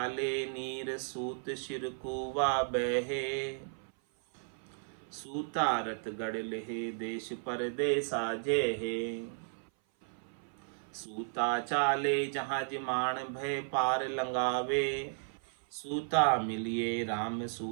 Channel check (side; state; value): left; silent; 55 dB below the other